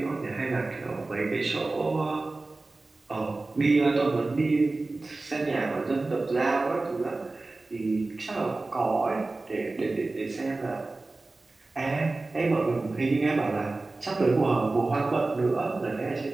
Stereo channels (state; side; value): quieter; left; 3.3 dB